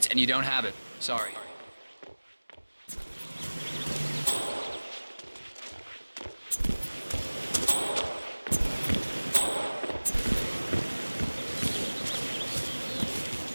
and you don't have it. Sorry.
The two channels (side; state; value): both; inverted; correlation -1.00